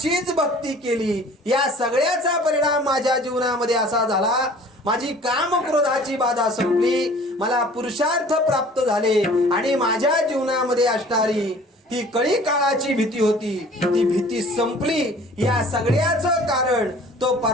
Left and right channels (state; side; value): normal; both; correlation 0.49